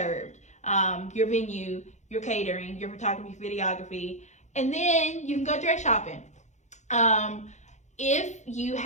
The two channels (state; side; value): late; right; 0.34 ms